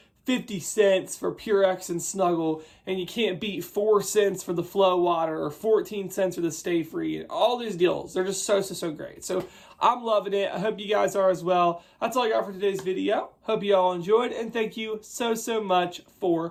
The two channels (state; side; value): identical; both; correlation 1.00